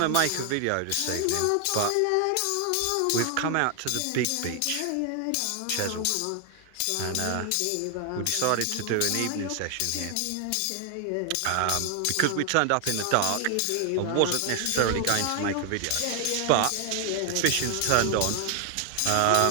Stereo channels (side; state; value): both; different; correlation 0.00